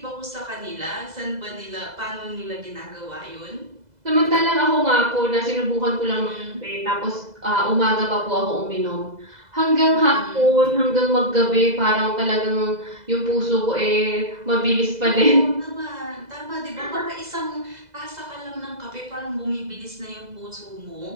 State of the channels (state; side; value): late; left; 2.0 ms